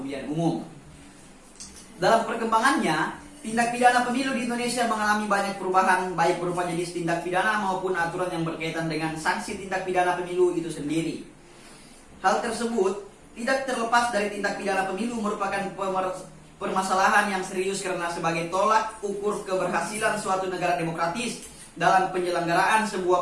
umum. Dalam perkembangannya, tindak pidana pemilu di Indonesia mengalami banyak perubahan, baik berupa jenis tindak pidana maupun aturan yang berkaitan dengan sanksi tindak pidana pemilu itu sendiri. Hal tersebut tidak terlepas dari tindak pidana pemilu merupakan permasalahan yang serius karena sebagai tolak ukur keberhasilan suatu negara demokratis dalam penyelenggaraan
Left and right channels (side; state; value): both; identical; correlation 1.00